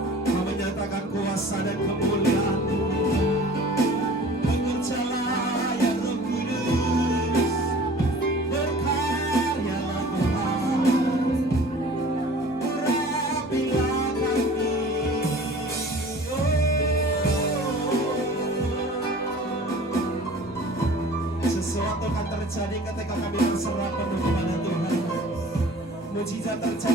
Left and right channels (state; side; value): normal; both; correlation 0.45